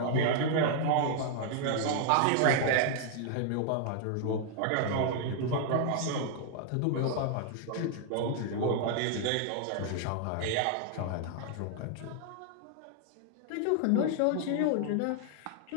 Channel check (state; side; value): different; both; correlation 0.00